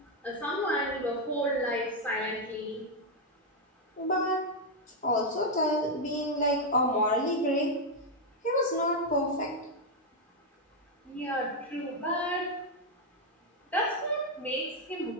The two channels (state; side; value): normal; both; correlation 0.02